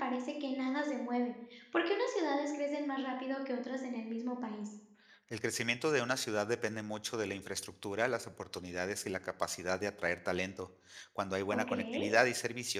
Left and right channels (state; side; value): identical; both; correlation 1.00